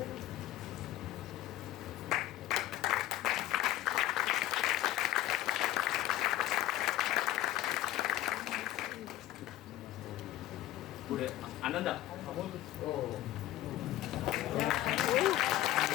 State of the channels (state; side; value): quieter; right; 14.7 dB